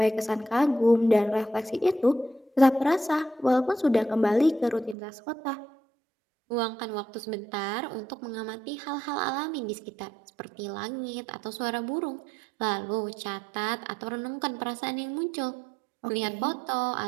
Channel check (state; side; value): drops out; left; at 5.0 s